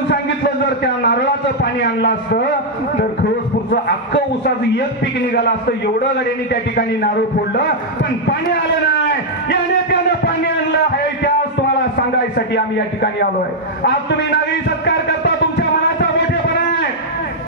सांगितलं. जर त्या नारळाचं पाणी आणलं असतं तर खरोसपूरचं अख्खं ऊसाचं एक पीक निघालं असतं. एवढं गड्यांनी त्या ठिकाणी नारळ फोडलं, पण पाणी आलं नाही. या नेत्यानं पाणी आणलं आहे, त्याच तुम्हाला सांगायसाठी आम्ही या ठिकाणी आलोय. आज तुम्ही नागरी सत्कार करता, तुमच्या मनाचा मोठेपणा आहे,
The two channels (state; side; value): normal; both; correlation -0.04